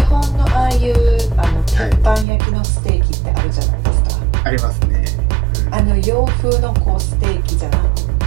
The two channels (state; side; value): drops out; left; at 2.2 s